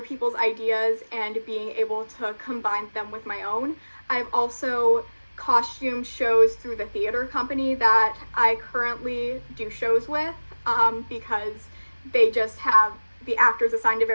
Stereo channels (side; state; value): both; inverted; correlation -1.00